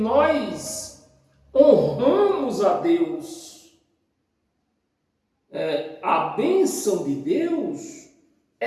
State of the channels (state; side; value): identical; both; correlation 1.00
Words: honramos a Deus. A bênção de Deus